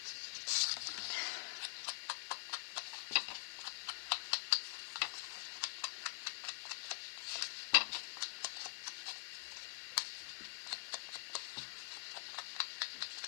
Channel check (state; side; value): silent; right; digital silence